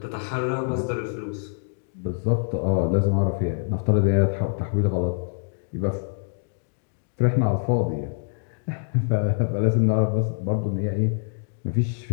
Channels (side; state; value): right; silent; 62 dB below the other